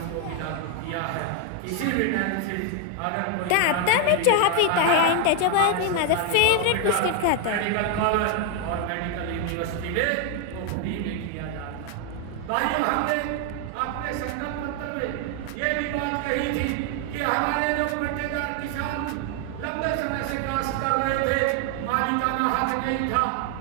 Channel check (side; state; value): both; different; correlation 0.01